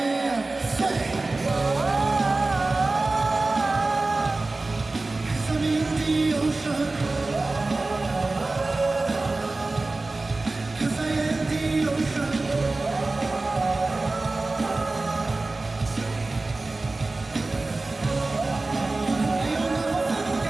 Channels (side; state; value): left; quieter; 3.2 dB